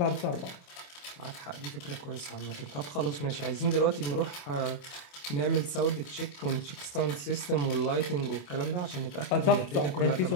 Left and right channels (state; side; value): late; right; 28 ms